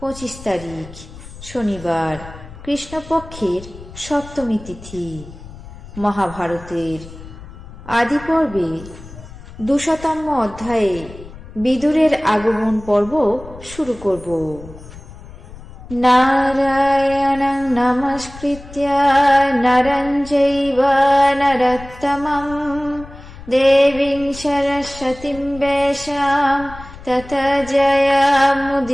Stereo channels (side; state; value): left; noise; rumble, 16 dB below the sound